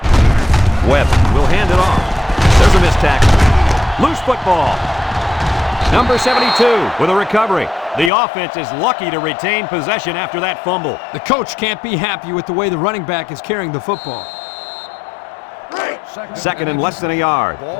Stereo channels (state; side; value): drops out; right; at 8.1 s